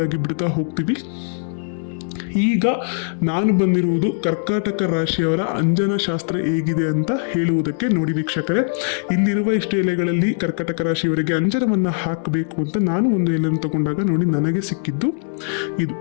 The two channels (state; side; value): silent; right; digital silence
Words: ಆಗಿ ಬಿಡ್ತಾ ಹೋಗ್ತೀವಿ. ಈಗ ನಾನು ಬಂದಿರುವುದು ಕರ್ಕಾಟಕ ರಾಶಿಯವರ ಅಂಜನ ಶಾಸ್ತ್ರ ಹೇಗಿದೆ ಅಂತ ಹೇಳುವುದಕ್ಕೆ. ನೋಡಿ ವೀಕ್ಷಕರೇ, ಇಲ್ಲಿರುವ ಇಷ್ಟು ಎಲೆಗಳಲ್ಲಿ ಕರ್ಕಾಟಕ ರಾಶಿಯವರಿಗೆ ಅಂಜನವನ್ನ ಹಾಕಬೇಕು ಅಂತ ನಾನು ಒಂದು ಎಲೆಯನ್ನು ತಗೊಂಡಾಗ ನೋಡಿ ನನಗೆ ಸಿಕ್ಕಿದ್ದು